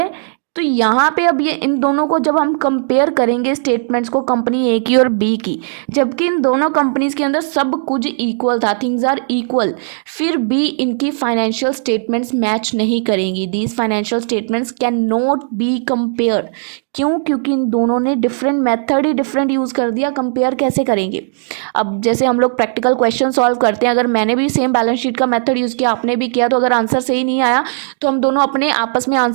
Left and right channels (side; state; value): left; silent; digital silence